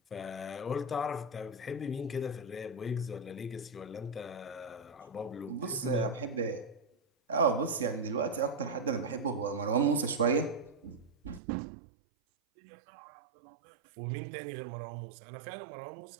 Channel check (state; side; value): drops out; left; at 11.4 s